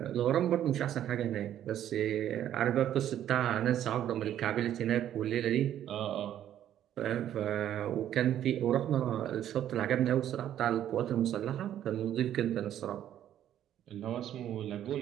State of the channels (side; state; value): left; quieter; 11.1 dB